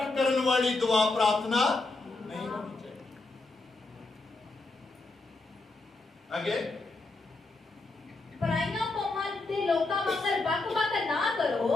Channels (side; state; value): right; quieter; 3.3 dB